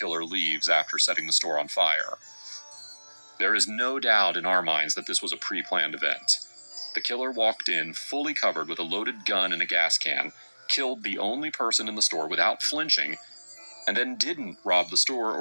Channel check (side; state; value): both; inverted; correlation -1.00